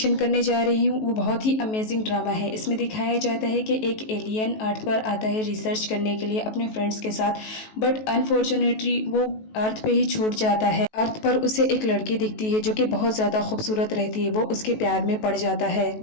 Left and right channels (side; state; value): right; late; 19 ms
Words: करने जा रही हूँ वो बहुत ही अमेजिंग ड्रामा है। इसमें दिखाया जाता है कि एक एलियन अर्थ पर आता है रिसर्च करने के लिए अपने फ्रेंड्स के साथ, बट अनफॉर्चुनेटली वो अर्थ पे ही छूट जाता है। अर्थ पर उसे एक लड़की दिखती है जो कि बहुत ज़्यादा खूबसूरत रहती है। वो उसके प्यार में पड़ जाता है,